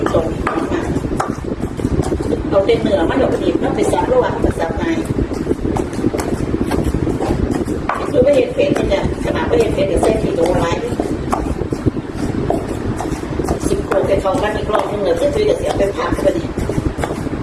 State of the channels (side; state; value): both; identical; correlation 1.00